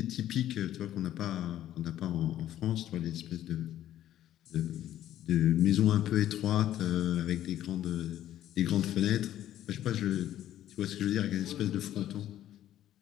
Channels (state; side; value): quieter; right; 12.3 dB